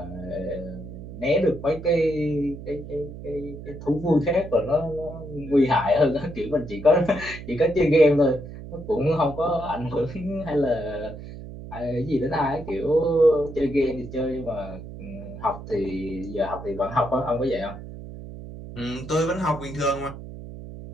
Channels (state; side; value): noise; right; hum, 12 dB below the sound